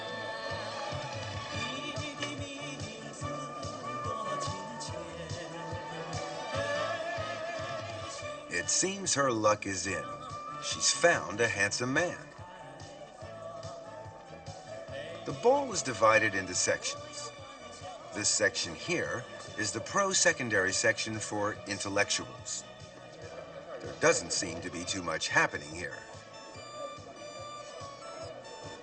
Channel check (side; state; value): both; identical; correlation 1.00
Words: It seems her luck is in. She's found a handsome man. The ball is divided into sections. This section here is the pro-secondary section for intellectuals. There doesn't seem to be too much happening here.